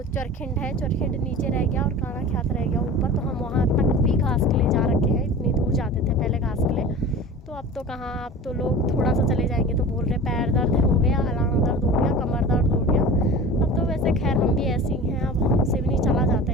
चरखिंड है, चरखिंड नीचे रह गया और काणा ख्यात रह गया ऊपर। तो हम वहाँ तक भी घास के लिए जा रखे हैं, इतनी दूर जाते थे पहले घास के लिए। तो अब तो कहाँ, अब तो लोग थोड़ा सा चले जाएंगे तो बोल रहे पैर दर्द हो गया, अलाना दर्द हो गया, कमर दर्द हो गया। अब तो वैसे खैर हम भी ऐसे ही हैं, अब हमसे भी नहीं चला जाता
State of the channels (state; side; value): normal; both; correlation 0.36